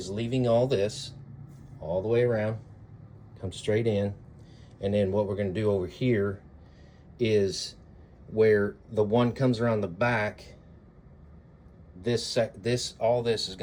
leaving all this all the way around, come straight in, and then what we're going to do over here is where the one comes around the back, all this is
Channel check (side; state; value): both; identical; correlation 1.00